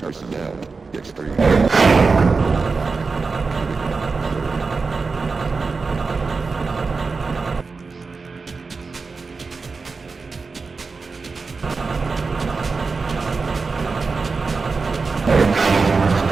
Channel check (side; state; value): left; quieter; 4.4 dB